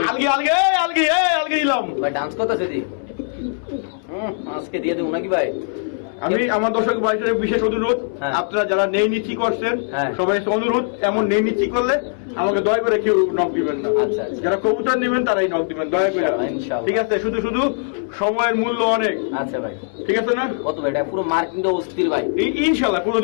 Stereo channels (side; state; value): right; silent; 65 dB below the other